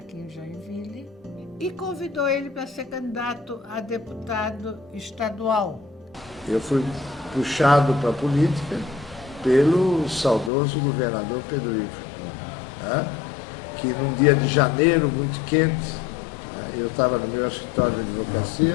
em Joinville e convidou ele para ser candidato a deputado estadual. Eu fui puxado para a política pelo saudoso governador Pedro Ivo, que num dia de janeiro muito quente, eu estava no meu escritório de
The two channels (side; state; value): right; drops out; at 10.5 s